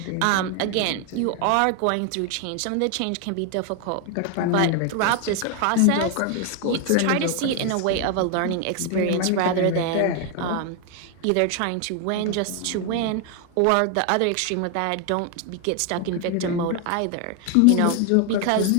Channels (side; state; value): both; different; correlation 0.01